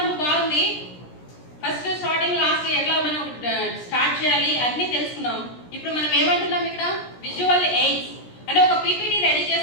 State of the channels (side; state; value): right; late; 17 ms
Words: బాగుంది. ఫస్ట్ స్టార్టింగ్ లాస్ట్ ఎట్లా మనం స్టార్ట్ చేయాలి అన్ని తెలుసుకున్నాం. ఇప్పుడు మనం ఏమంటున్నాం ఇక్కడ, విజువల్ ఎయిడ్స్ అంటే ఒక పీపీటీ రెడీ